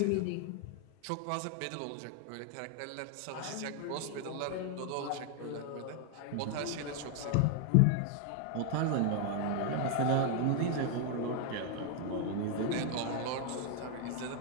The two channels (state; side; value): different; both; correlation 0.00